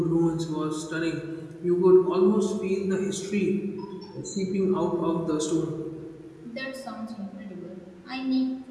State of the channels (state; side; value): identical; both; correlation 1.00